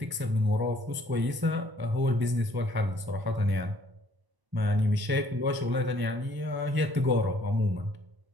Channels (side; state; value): left; late; 1.0 ms